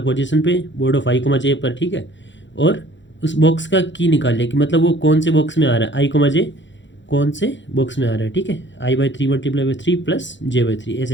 पोजीशन पे बोर्ड ऑफ i, j पर, ठीक है। और उस बॉक्स का की निकाल लिया कि मतलब वो कौन से बॉक्स में आ रहा है, i, j कौन से बॉक्स में आ रहा है, ठीक है। i/3 × 3 + j/3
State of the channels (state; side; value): late; right; 0.54 ms